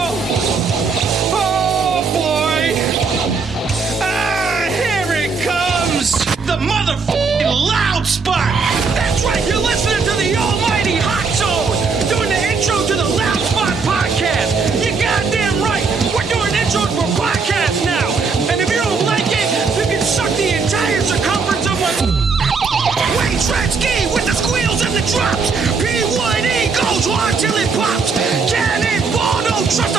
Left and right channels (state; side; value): quieter; left; 4.8 dB